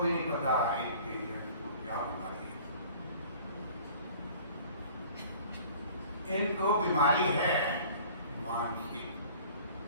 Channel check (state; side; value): inverted; both; correlation -0.48